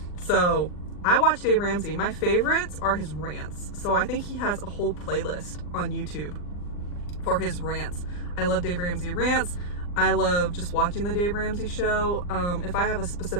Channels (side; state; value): right; late; 39 ms